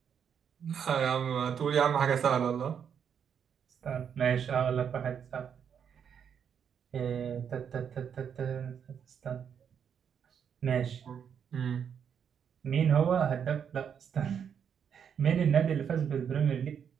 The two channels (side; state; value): left; quieter; 7.7 dB